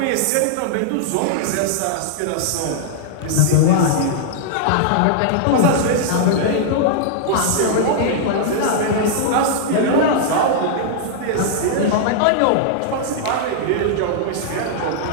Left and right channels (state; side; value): different; both; correlation -0.01